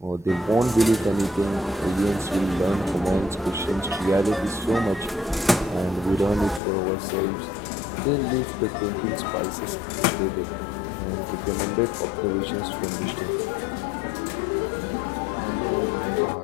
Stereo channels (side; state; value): right; drops out; at 6.6 s